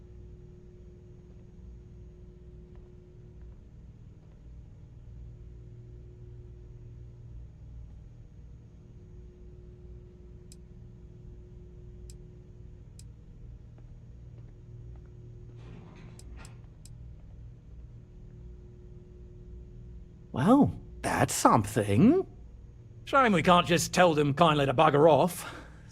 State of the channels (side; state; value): both; identical; correlation 1.00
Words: Well, that's something. Shame we can't just tell them kindly to bugger off.